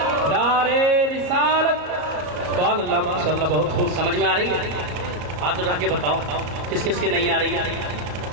نعرے رسالت. سبحان اللہ ماشاء اللہ, بہت خوب. سمجھ میں آ رہی ہے؟ ہاتھ اٹھا کے بتاؤ کس کس کی نہیں آ رہی ہے.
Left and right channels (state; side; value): late; left; 33 ms